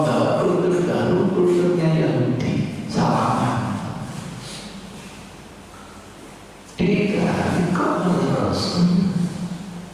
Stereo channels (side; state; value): both; identical; correlation 1.00